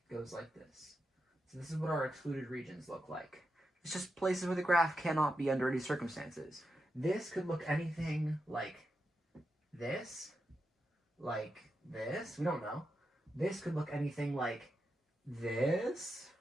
goes like this. So this is what our excluded regions look like. It's just places where the graph cannot be under any circumstances. This could look anything like this, we don't know. This could look anything like this,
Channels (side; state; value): both; normal; correlation 0.87